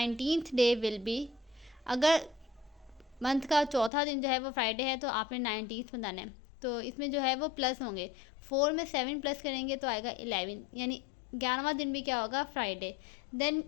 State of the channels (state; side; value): drops out; right; at 3.9 s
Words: day will be. अगर मंथ का चौथा दिन जो है वो फ्राइडे है तो आपने 19th बताना है. तो इसमें जो है वो प्लस होंगे. 4 में 7 प्लस करेंगे तो आएगा 11 यानी 11वां दिन भी क्या होगा, फ्राइडे. देन